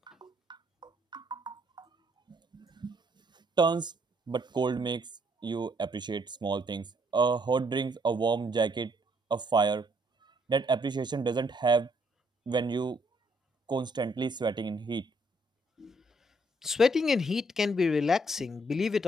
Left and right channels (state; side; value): normal; both; correlation 0.70